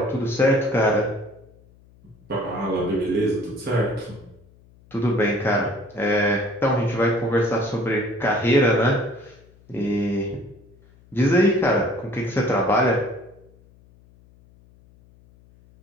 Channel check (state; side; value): noise; left; hum, 28 dB below the sound